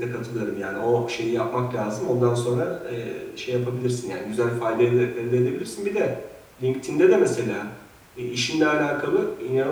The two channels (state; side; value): identical; both; correlation 1.00